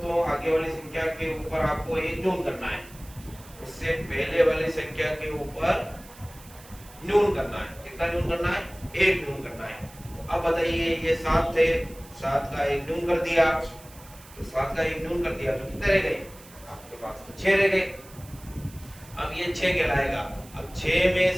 आगे वाली संख्या के ऊपर आपको एक न्यून करना है, उससे पहले वाली संख्या के ऊपर न्यून करना है। कितना न्यून करना है, एक न्यून करना है। अब बताइए ये 7 थे, 7 का एक न्यून कर दिया, तो 7 का एक न्यून कर दिया तो कितने रह गए आपके पास, तो 6 रह गए। अब ये 6 कहलाएगा। अब 6 में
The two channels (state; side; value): noise; right; hiss, 21 dB below the sound